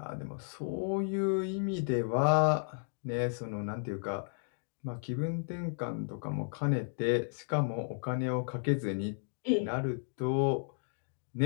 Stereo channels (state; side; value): silent; right; digital silence